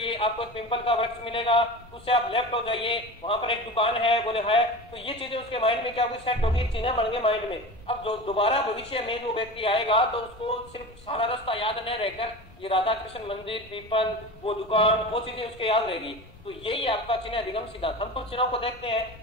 आपको एक पिंपल का वृक्ष मिलेगा, उससे आप लेफ्ट हो जाइए, वहां पर एक दुकान है, बोले है, तो ये चीजें उसके माइंड में क्या हुई, सेट होगी, चिन्ह बन गए माइंड में। अब जो दोबारा भविष्य में जो व्यक्ति आएगा तो उसको सिर्फ सारा रास्ता याद नहीं रहकर ये राधा कृष्ण मंदिर, पीपल, वो दुकान, वो चीजें उसके याद रहेगी। तो यही आपका चिन्ह अधिगम सिद्धांत। हम तो चिन्हों को देखते हैं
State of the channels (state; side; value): normal; both; correlation 0.31